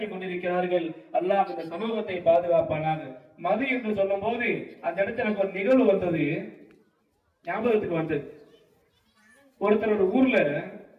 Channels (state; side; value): identical; both; correlation 1.00